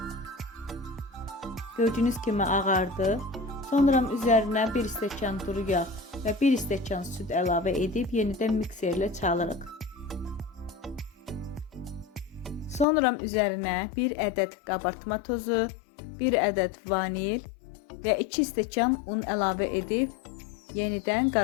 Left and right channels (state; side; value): drops out; right; at 12.9 s